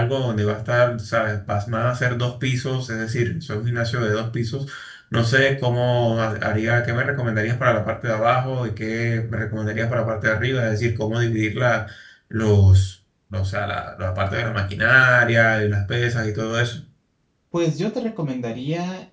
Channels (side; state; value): both; identical; correlation 1.00